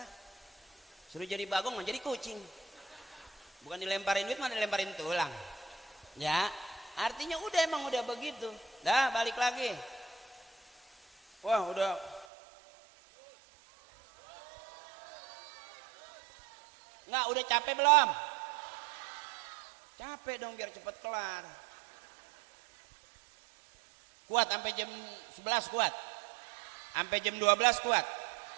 Suruh jadi bagong mau jadi kucing. Bukan dilemparin duit, mana dilemparin tulang. Ya, artinya emang udah begitu. Dah balik lagi. Wah, udah. Enggak, udah capek belum? Capek dong biar cepet kelar. Kuat sampai jam 11 kuat. Sampai jam 12 kuat.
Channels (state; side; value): drops out; left; at 12.2 s